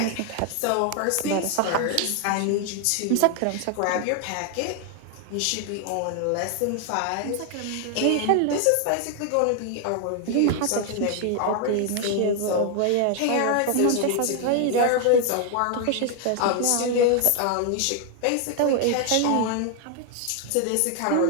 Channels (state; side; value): different; both; correlation 0.00